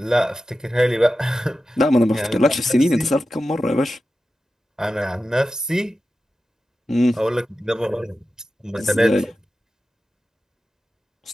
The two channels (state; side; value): normal; both; correlation 0.93